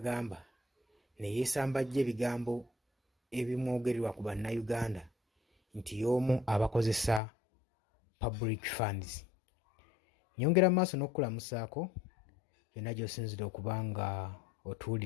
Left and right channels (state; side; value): drops out; right; at 7.2 s